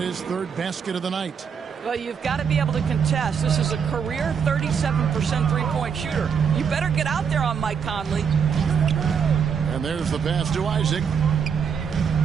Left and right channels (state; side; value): quieter; left; 6.9 dB